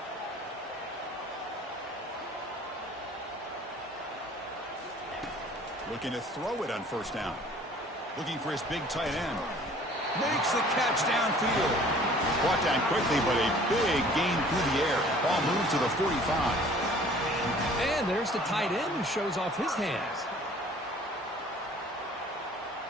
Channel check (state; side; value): normal; both; correlation 0.52